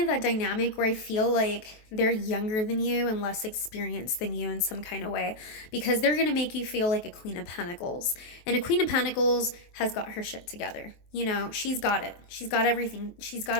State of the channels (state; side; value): late; right; 23 ms